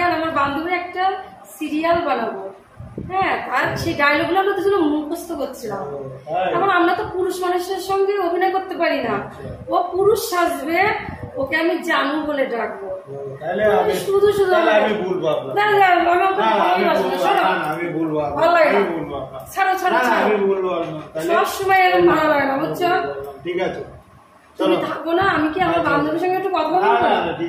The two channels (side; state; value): both; identical; correlation 1.00